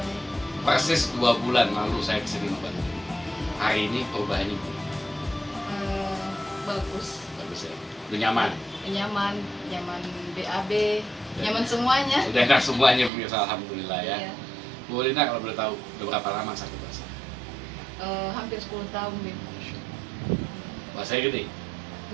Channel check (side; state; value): left; drops out; at 13.1 s